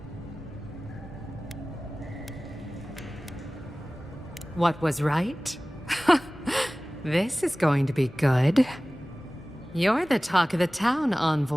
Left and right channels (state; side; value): normal; both; correlation 0.98